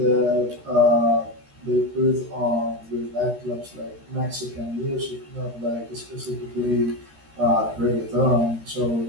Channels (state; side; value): late; left; 13 ms